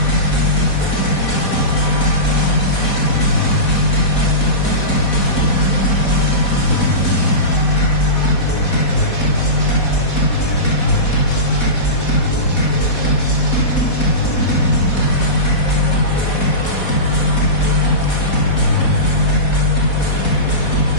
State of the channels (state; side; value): late; right; 4.1 ms